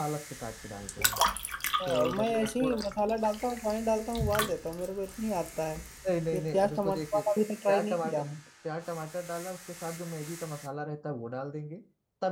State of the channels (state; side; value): identical; both; correlation 1.00